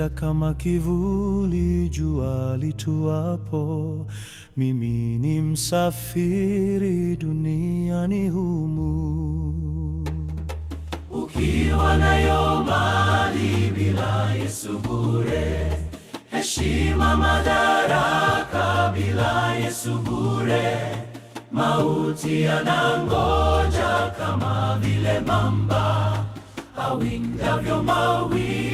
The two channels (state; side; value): identical; both; correlation 1.00